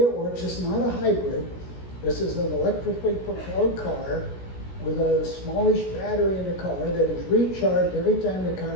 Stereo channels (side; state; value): right; late; 16 ms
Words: works, it's not a hybrid. This is an electrically propelled car with a smallish battery in the car that is recharged every time the